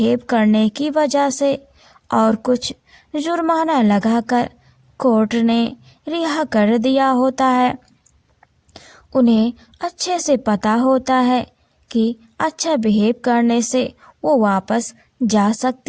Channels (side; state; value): both; identical; correlation 1.00